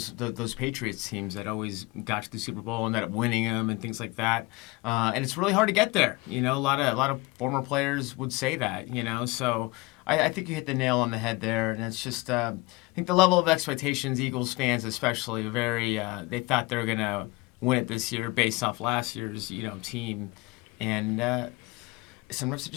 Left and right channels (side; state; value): right; quieter; 23.3 dB